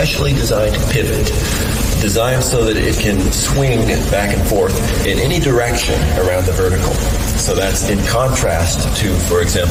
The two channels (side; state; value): both; identical; correlation 1.00